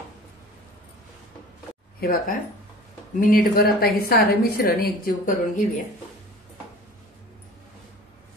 हे बघा, मिनिटभर आता हे सारं मिश्रण एकजीव करून घेऊया.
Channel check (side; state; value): both; normal; correlation 0.42